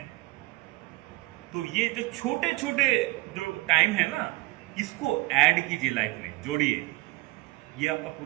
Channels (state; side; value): quieter; left; 21.6 dB